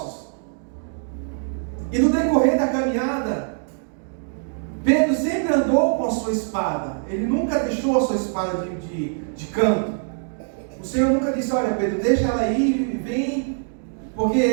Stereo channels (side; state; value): left; silent; digital silence